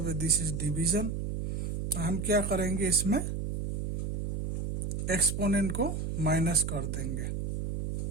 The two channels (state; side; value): noise; right; hum, 1 dB below the sound